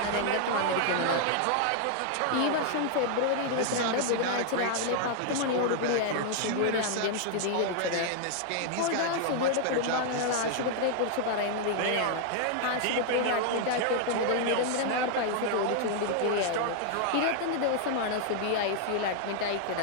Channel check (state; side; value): different; both; correlation 0.00